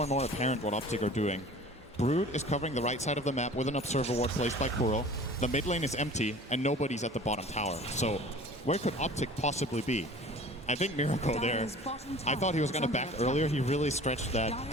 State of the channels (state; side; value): normal; both; correlation 0.44